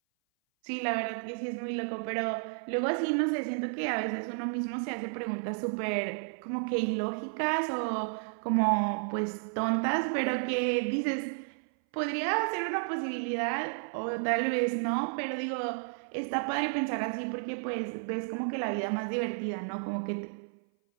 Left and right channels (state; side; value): silent; left; 57 dB below the other